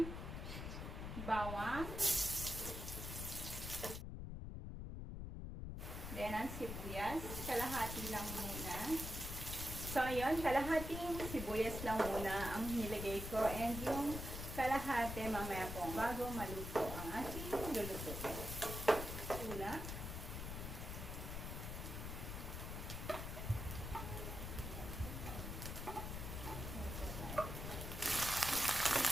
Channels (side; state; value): left; noise; rumble, 5 dB below the sound